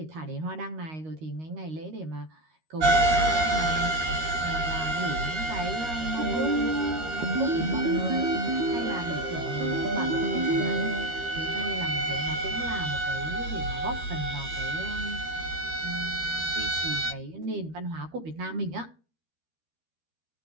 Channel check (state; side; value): late; left; 13 ms